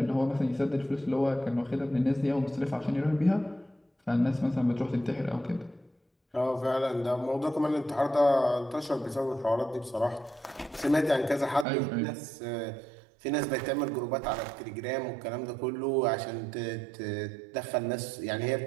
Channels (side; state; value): left; drops out; at 11.7 s